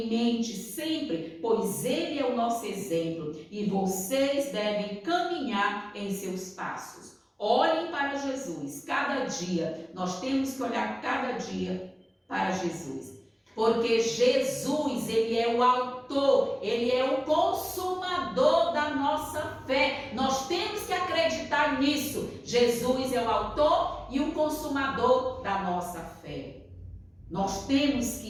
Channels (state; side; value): identical; both; correlation 1.00